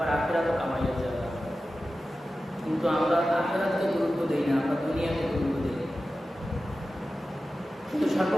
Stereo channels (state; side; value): normal; both; correlation 0.94